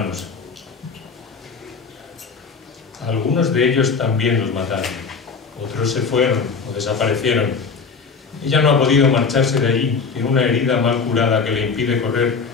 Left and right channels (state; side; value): quieter; right; 5.1 dB